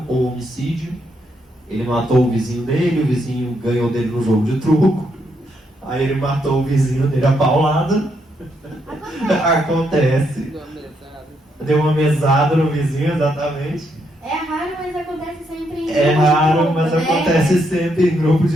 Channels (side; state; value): both; normal; correlation 0.77